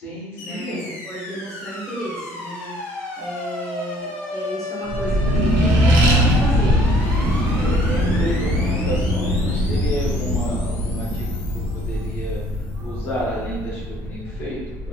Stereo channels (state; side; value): normal; both; correlation 0.59